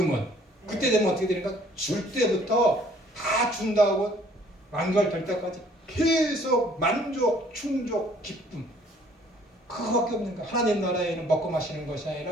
그때 되면 어떻게 되니까 줄 때부터 다 준다고 완결될 때까지 계속 만족, 충족, 기쁨 그거밖에 없는 거야. 하나님 나라에는 먹고 마시는 것이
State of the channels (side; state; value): both; normal; correlation 0.58